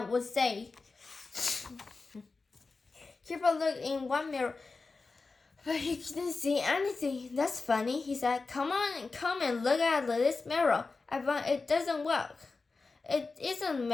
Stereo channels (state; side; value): quieter; right; 4.0 dB